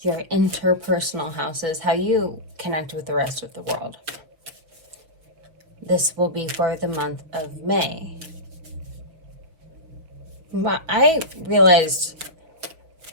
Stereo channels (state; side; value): late; left; 6.1 ms